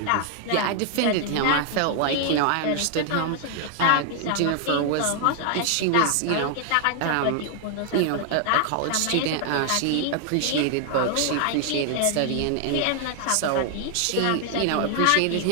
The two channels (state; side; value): different; both; correlation 0.00